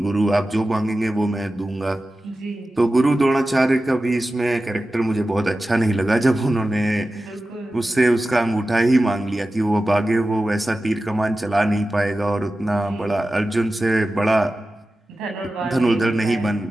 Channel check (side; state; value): both; normal; correlation 0.94